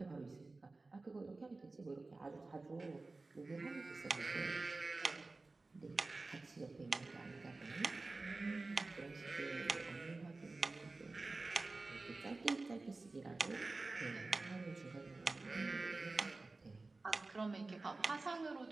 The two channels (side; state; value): left; quieter; 3.4 dB